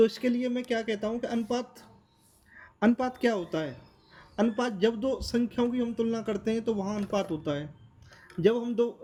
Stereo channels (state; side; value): identical; both; correlation 1.00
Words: इसके लिए मैं क्या कहता हूँ कि अनुपात अनुपात क्या होता है? अनुपात, जब दो संख्याओं की हम तुलना करते हैं तो वहाँ अनुपात होता है। जब हम दो,